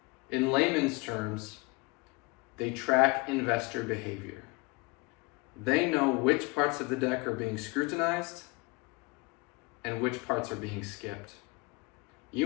In layman's terms, they track investor behavior. They know which parts of the deck are being scrutinized and which parts are being skipped.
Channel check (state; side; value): quieter; right; 26.9 dB